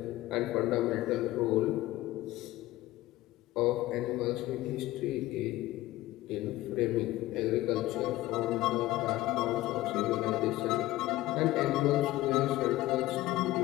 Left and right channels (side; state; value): right; quieter; 16.8 dB